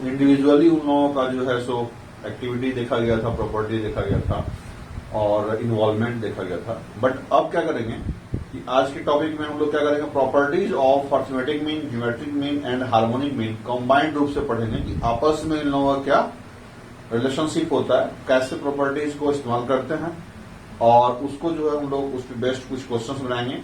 इंडिविजुअली उन लोगों का जो है सो एक्टिविटी देखा गया था, प्रॉपर्टी देखा गया था और इन्वॉल्वमेंट देखा गया था। बट अब क्या करेंगे कि आज के टॉपिक में हम लोग क्या करेंगे, properties of arithmetic mean, geometric mean and harmonic mean combined रूप से पढ़ेंगे कि आपस में इन लोगों का क्या रिलेशनशिप होता है, कैसे प्रॉपर्टीज को इस्तेमाल करते हैं और उसको जो है हम लोग उस पर बेस्ट कुछ क्वेश्चंस बनाएंगे।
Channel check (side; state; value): both; identical; correlation 1.00